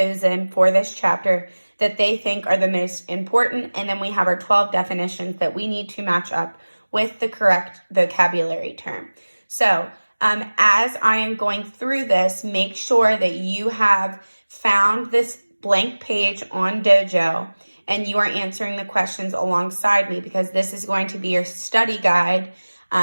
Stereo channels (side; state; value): both; inverted; correlation -1.00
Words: for this chapter that they think are the most important. And then we have our 12 definitions that we need to match up with the correct vocabulary term. So as I am going through this, make sure that you have found this blank page on Dojo and you are answering the questions alongside me, because this is going to be your study guide